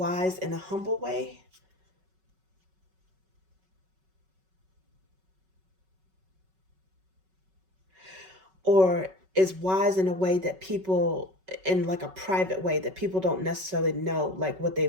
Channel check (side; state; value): left; late; 5.3 ms